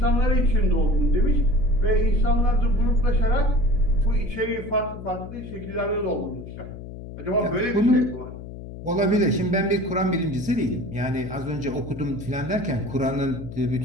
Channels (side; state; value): left; noise; hum, 12 dB below the sound